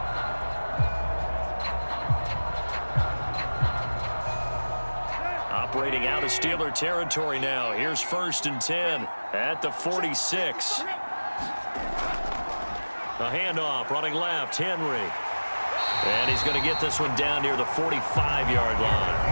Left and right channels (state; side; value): inverted; both; correlation -1.00